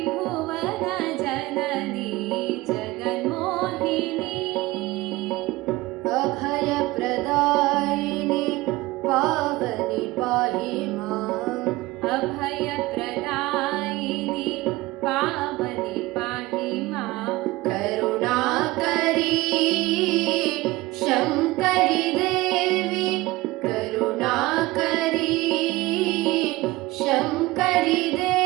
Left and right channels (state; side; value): quieter; left; 19.6 dB